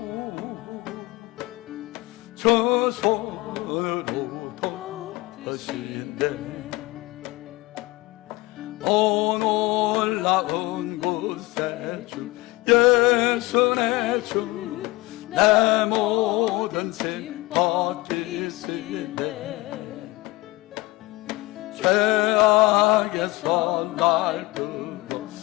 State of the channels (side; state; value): right; quieter; 21.1 dB